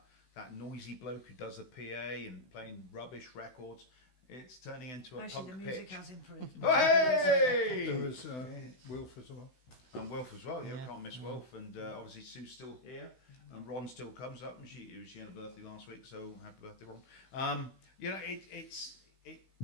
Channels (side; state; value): right; late; 16 ms